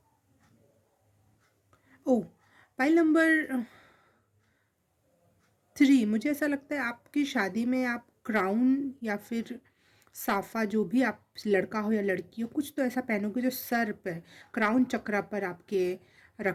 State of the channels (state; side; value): identical; both; correlation 1.00